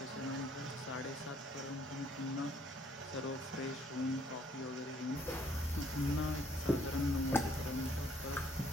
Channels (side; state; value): both; normal; correlation 0.65